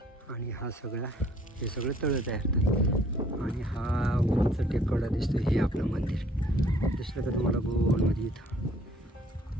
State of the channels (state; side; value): normal; both; correlation 0.59